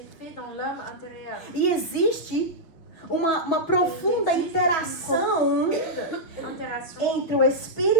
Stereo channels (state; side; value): late; right; 6.1 ms